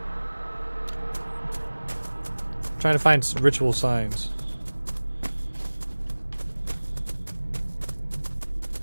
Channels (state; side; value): inverted; both; correlation -1.00